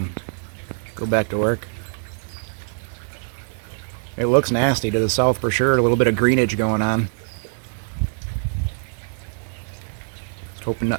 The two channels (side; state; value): left; silent; 59 dB below the other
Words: go back to work. It looks nasty to the south for sure. A little bit of greenage going on. Hoping